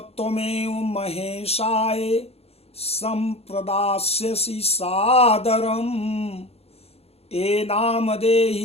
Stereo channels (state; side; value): late; right; 0.29 ms